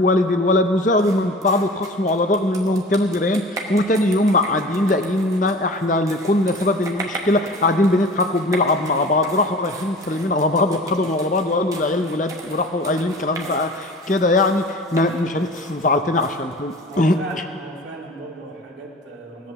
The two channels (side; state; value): both; normal; correlation 0.41